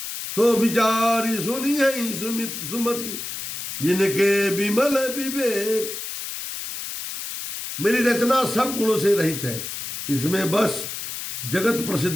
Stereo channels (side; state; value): left; noise; hiss, 7 dB below the sound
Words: सो विचारी सुनी है सुमति, जिनके विमल विवेक। मेरी रचना सब गुणों से रहित है, इसमें बस जगत